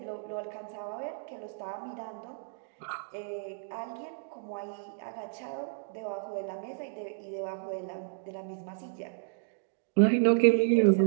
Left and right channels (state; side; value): silent; left; digital silence